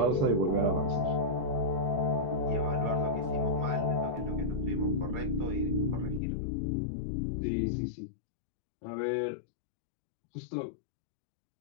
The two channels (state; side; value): drops out; right; at 6.2 s